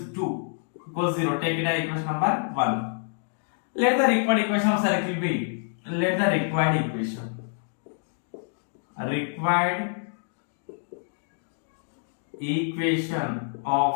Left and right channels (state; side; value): silent; right; digital silence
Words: 2 equals 0. Take it as equation number 1. Let the required equation of circle be. Let the required equation of